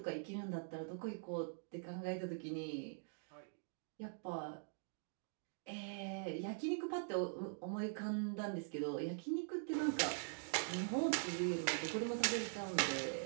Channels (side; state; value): left; silent; digital silence